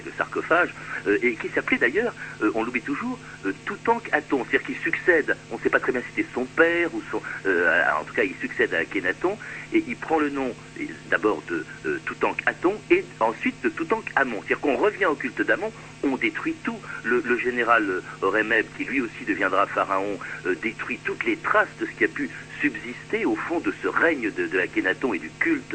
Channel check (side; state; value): both; identical; correlation 1.00